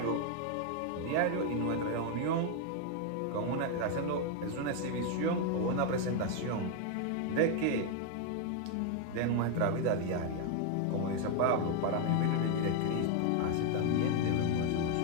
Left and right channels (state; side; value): different; both; correlation 0.01